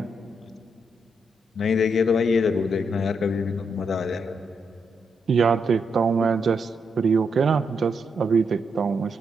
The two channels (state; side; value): normal; both; correlation 0.81